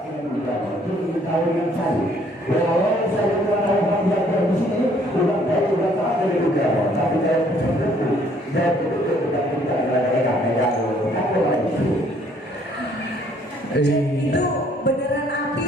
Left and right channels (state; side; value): normal; both; correlation 0.62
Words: Tahun yang saya, awal saya tahu yang ada di sini, udah tak ada juga, tapi saya betul-betul tidak itu beneran api